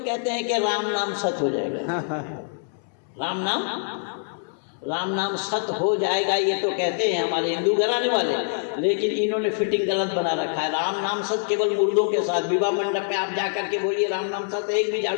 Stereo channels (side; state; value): right; silent; digital silence